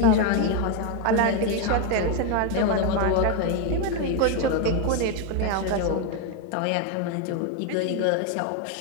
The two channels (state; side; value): different; both; correlation 0.02